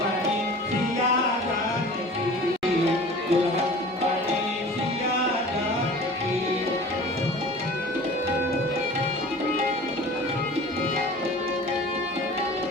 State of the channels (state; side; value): normal; both; correlation 0.42